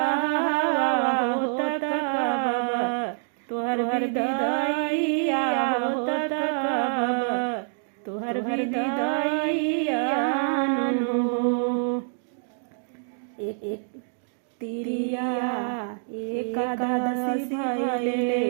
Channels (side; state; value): left; silent; digital silence